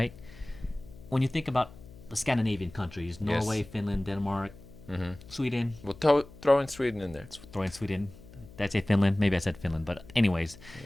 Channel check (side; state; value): left; noise; hum, 19 dB below the sound